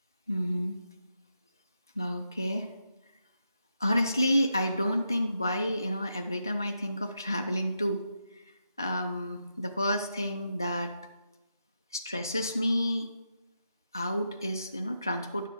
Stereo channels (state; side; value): inverted; both; correlation -0.84